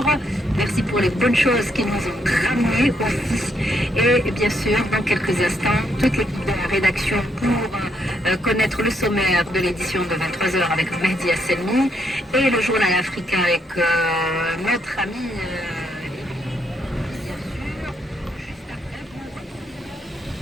Merci pour les bonnes choses qui nous ont ramenées aussi. Et bien sûr, dans quelques instants, toute l'équipe de la rédaction pour connaître le sommaire de l'édition de 23 h avec Mehdi Hasselmi et le journal africain avec notre ami bien sûr, juste après pour une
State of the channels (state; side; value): normal; both; correlation 0.75